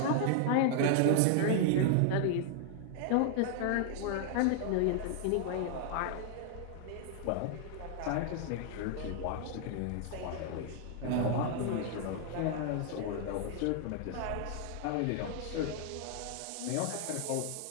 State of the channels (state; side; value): different; both; correlation 0.00